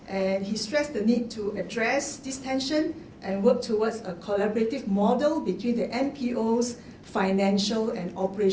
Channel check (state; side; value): identical; both; correlation 1.00